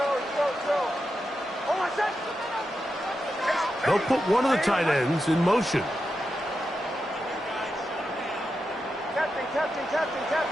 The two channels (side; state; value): both; normal; correlation 0.88